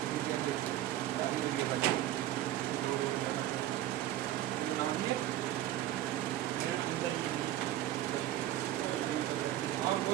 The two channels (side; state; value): left; quieter; 13.5 dB